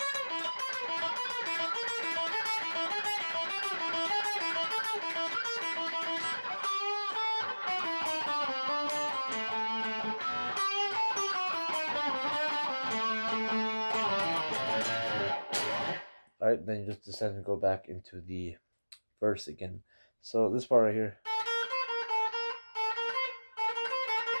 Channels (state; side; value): inverted; both; correlation -1.00